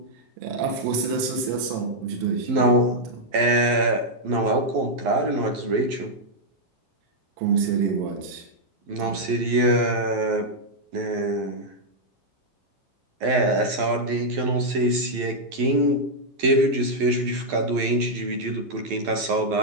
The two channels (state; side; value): late; left; 11 ms